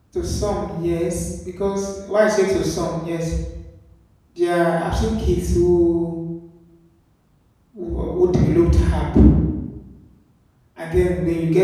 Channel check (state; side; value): identical; both; correlation 1.00